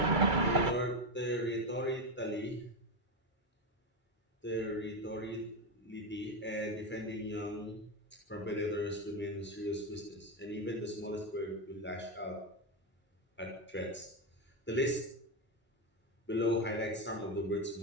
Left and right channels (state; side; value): normal; both; correlation 0.10